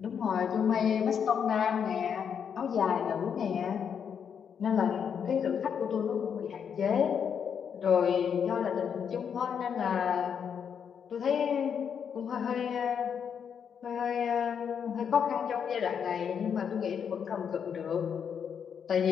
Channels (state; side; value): quieter; right; 7.5 dB